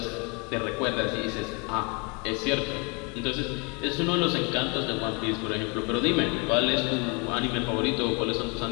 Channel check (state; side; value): quieter; right; 31.7 dB